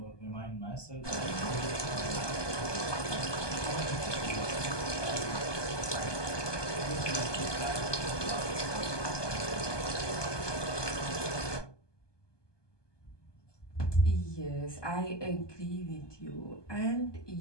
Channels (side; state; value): right; late; 1.2 ms